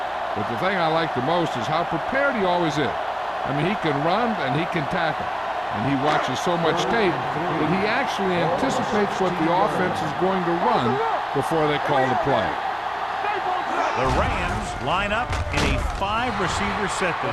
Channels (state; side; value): identical; both; correlation 1.00